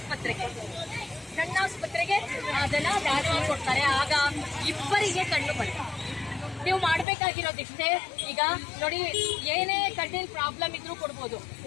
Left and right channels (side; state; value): right; drops out; at 7.1 s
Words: ಕಣ್ಣಾಸ್ಪತ್ರೆಗೆ ಅದನ್ನ ದಾನ ಕೊಡ್ತಾರೆ. ಆಗ ಇಬ್ಬರಿಗೆ ಕಣ್ಣು ಬರ್ತದೆ. ನೀವು ಮಾಡ್ಬೇಕಾಗಿರೋದಿಷ್ಟೇ. ಈಗ ನೋಡಿ, ಏನೇ ಕಣ್ಣಿನ ಪ್ರಾಬ್ಲಮ್ ಇದ್ರೂ ಕೊಡ್ಬೋದು,